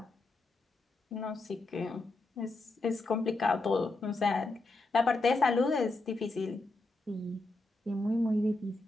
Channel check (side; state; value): right; quieter; 3.0 dB